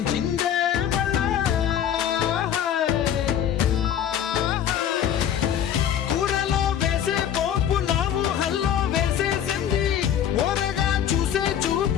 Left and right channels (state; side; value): quieter; right; 9.6 dB